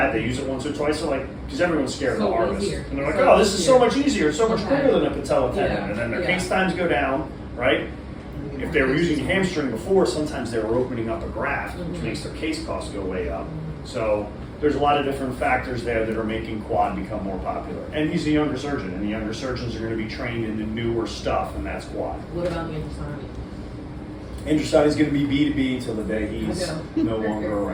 they use it once or twice. They're like, because everyone's scared of the So harvest, easier. and they're like, So oh, this is so easier. much easier, it's so much Okay. quicker than a patella tendon, Yeah, and then their yeah. case times go down, right? If they were using a hamstring before, sometimes they were opening up a graft, which Mhm. makes their case costs go way up. So there's a lot of different factors there that are making quad become more popular. And he's a younger surgeon, and the younger surgeons are going to be trained in the newer stuff, and that's quad. What about the Andrusani? Andrusani is going to be B2B till the day he's I no longer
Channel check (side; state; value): both; identical; correlation 1.00